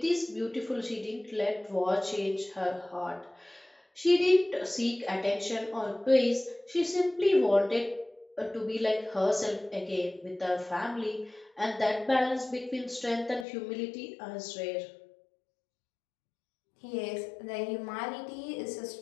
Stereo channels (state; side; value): drops out; right; at 13.5 s